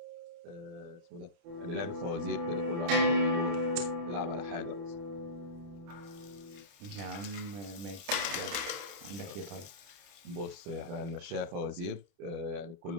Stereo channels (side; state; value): left; late; 29 ms